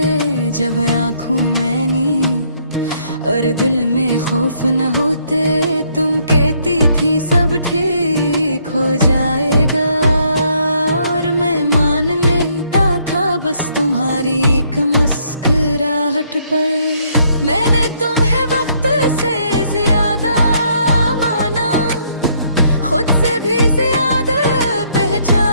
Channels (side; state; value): both; inverted; correlation -0.69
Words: जब आँखों में नींद और दिल में खौफ न होते। तुम कहती थी सब ठीक हो जाएगा, और मैं मान लेता था बस तुम्हारी एक मुस्कुराहट पर। मैंने तुम्हें वक्त से ज्यादा माना, खुद से भी ज्यादा